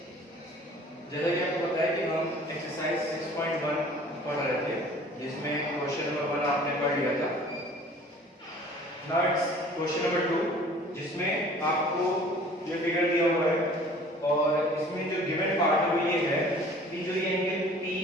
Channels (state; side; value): normal; both; correlation 0.49